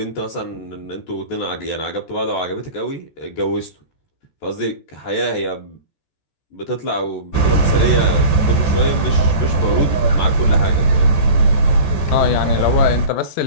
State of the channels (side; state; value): right; late; 14 ms